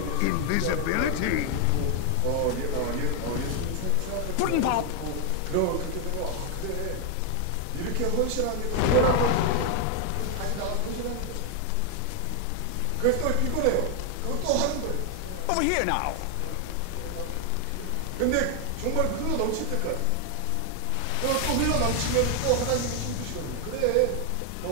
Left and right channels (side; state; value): both; different; correlation 0.00